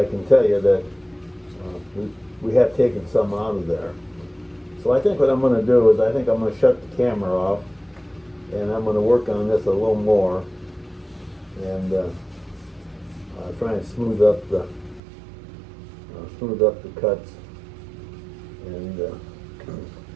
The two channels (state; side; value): drops out; left; at 15.0 s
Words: can tell you that we have taken some out of there. So I think what I'm going to do is I think I'm going to shut the camera off, and I'm going to work on this a little more, and try and smooth up the cuts, and